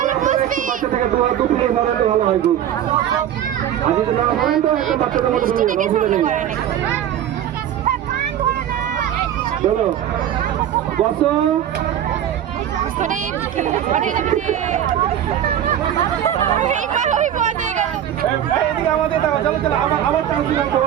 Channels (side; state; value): left; quieter; 10.6 dB